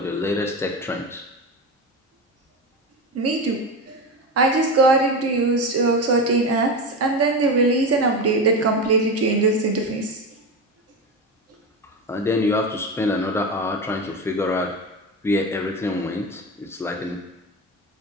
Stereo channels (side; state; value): both; normal; correlation 0.21